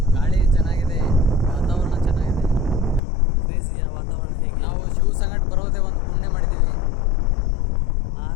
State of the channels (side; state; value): right; drops out; at 3.0 s